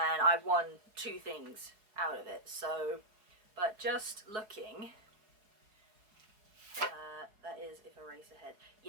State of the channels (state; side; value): late; left; 4.8 ms